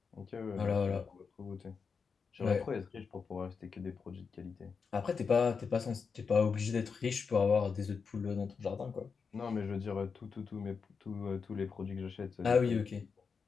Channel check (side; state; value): right; quieter; 5.5 dB